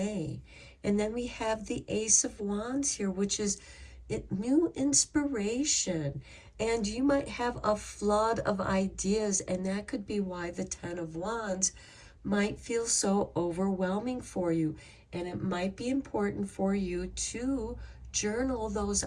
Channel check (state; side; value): identical; both; correlation 1.00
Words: And then we have the Ace of Wands here, which is new inspiration. And you might have a flood of ideas, and that could be why the 10 of Wands might feel so overwhelming for you. And it might be important for you to journal those